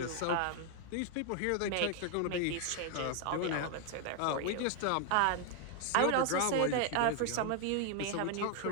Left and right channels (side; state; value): both; different; correlation 0.00